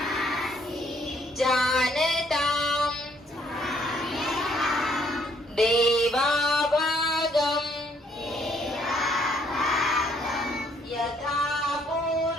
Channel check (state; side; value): normal; both; correlation 0.67